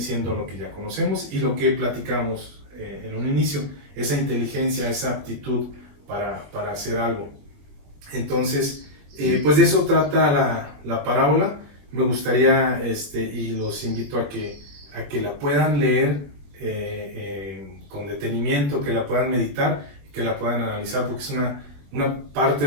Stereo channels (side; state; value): left; late; 21 ms